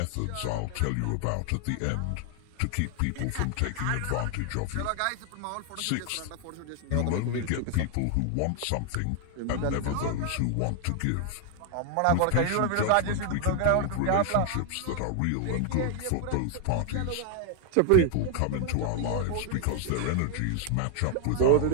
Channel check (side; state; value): both; different; correlation 0.00